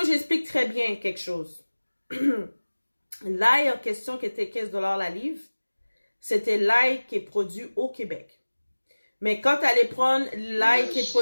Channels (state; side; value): inverted; both; correlation -1.00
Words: que j'explique très bien quelque chose. L'ail en question qui était 15 $ la livre, c'était l'ail qui est produit au Québec. Mais quand tu allais prendre l'ail qui est